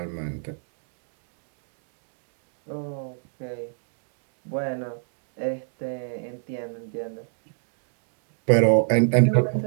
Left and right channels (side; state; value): left; silent; digital silence